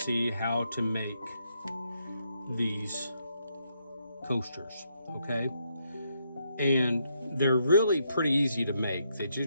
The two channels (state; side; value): inverted; both; correlation -0.77